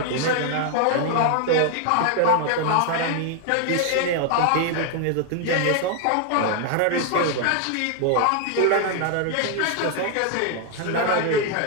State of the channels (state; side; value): different; both; correlation 0.00